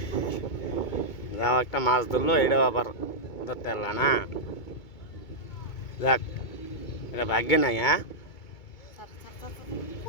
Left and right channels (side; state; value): right; late; 2.2 ms